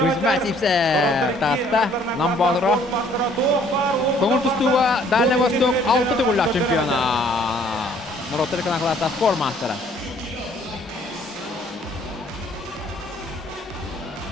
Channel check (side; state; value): both; normal; correlation 0.60